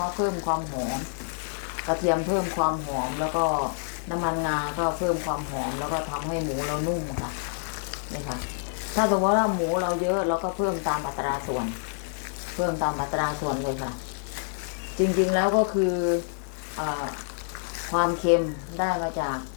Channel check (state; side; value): silent; right; digital silence